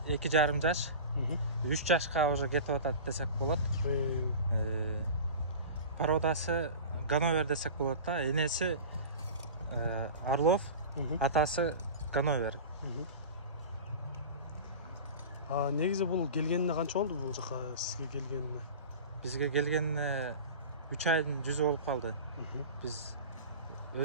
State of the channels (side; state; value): both; inverted; correlation -0.33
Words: жаш, 3 жашка уже кетип атат десек болот. Породасы Ганновер десек болот да. Энеси Орлов, атасы Ганновер. Негизи бул келгенине канча болду бул жака сизге келгенине? Бизге келгенине 3 айдын жүзү болуп калды. Биз